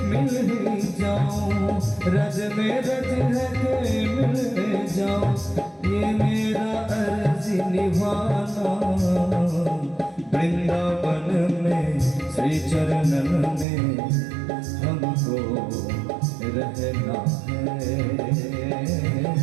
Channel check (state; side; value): drops out; left; at 13.7 s